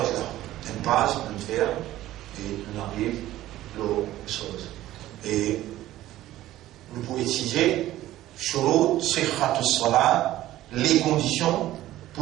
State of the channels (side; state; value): left; quieter; 14.7 dB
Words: là. Une page, une faire, et on arrive l'autre chose. Et nous pouvons étudier shurut sihhatus salat, les conditions